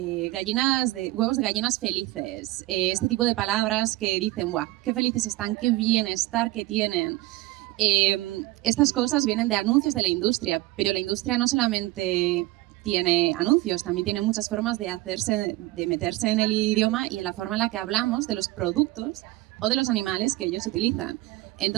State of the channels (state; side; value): quieter; left; 19.0 dB